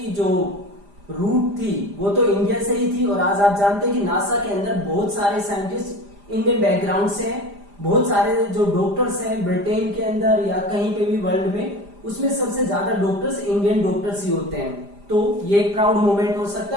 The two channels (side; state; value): left; late; 5.0 ms